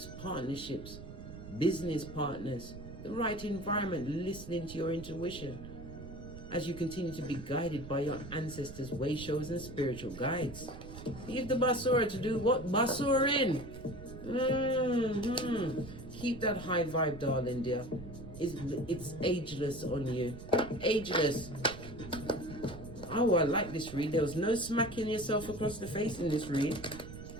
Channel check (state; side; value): noise; right; rumble, 12 dB below the sound